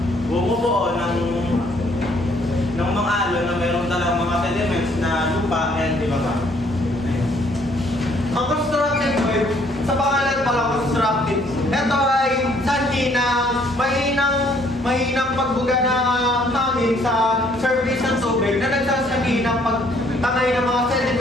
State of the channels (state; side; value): normal; both; correlation 0.64